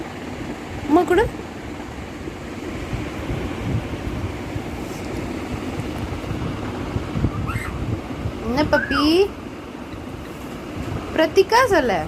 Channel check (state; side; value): identical; both; correlation 1.00